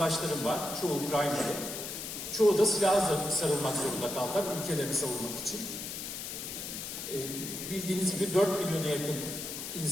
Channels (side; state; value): left; noise; hiss, 7 dB below the sound